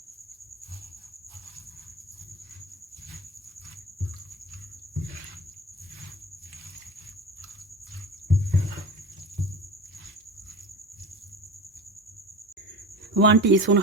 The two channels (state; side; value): normal; both; correlation 0.31